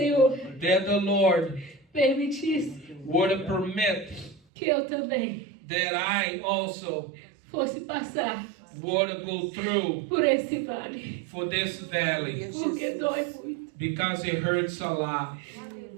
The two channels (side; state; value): left; drops out; at 4.4 s